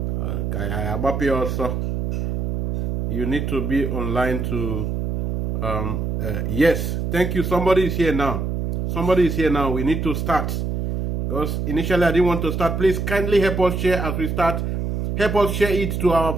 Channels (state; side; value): noise; right; hum, 1 dB below the sound